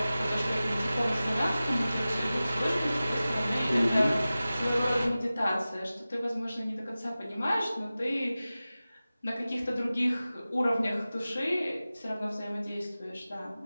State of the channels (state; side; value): inverted; both; correlation -0.96